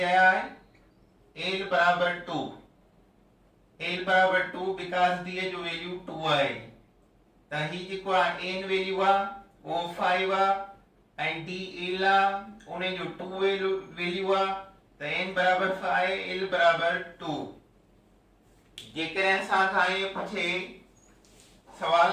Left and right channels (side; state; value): both; identical; correlation 1.00